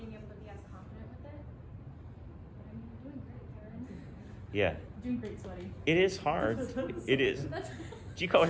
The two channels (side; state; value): both; identical; correlation 1.00